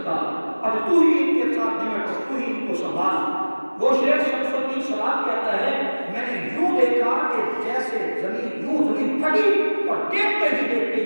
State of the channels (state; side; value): inverted; both; correlation -1.00